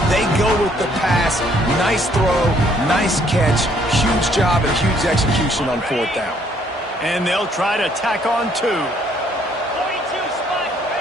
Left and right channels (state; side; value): normal; both; correlation 0.65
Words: They go with the pass. Nice throw, nice catch. Huge job and huge execution on 4th down. And they'll try to tack on 2.